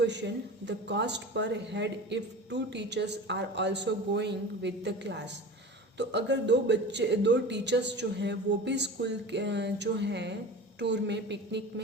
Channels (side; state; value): both; normal; correlation 0.34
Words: the cost per head if 2 teachers are also going with the class. तो अगर दो टीचर्स जो हैं वो भी स्कूल जो हैं टूर में, पिकनिक